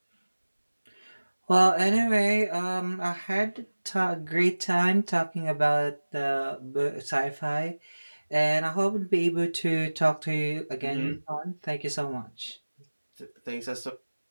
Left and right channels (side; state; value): both; inverted; correlation -1.00